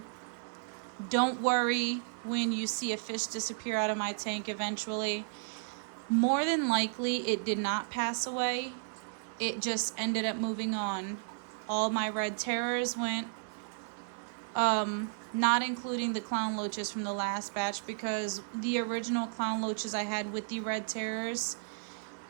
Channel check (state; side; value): silent; left; 55 dB below the other